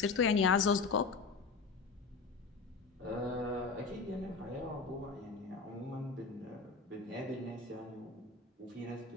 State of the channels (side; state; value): right; quieter; 4.5 dB